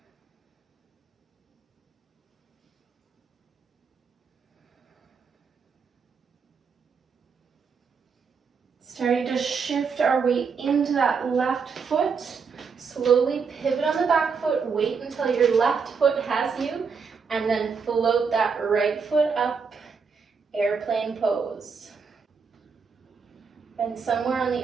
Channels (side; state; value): left; quieter; 5.6 dB